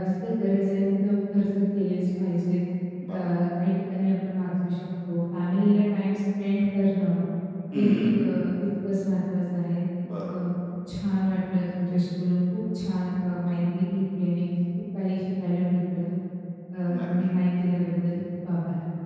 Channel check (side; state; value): both; identical; correlation 1.00